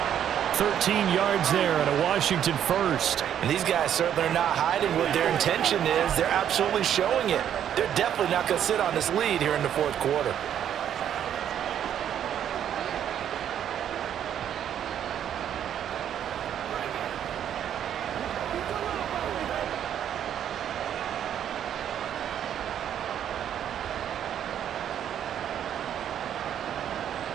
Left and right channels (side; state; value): left; quieter; 9.8 dB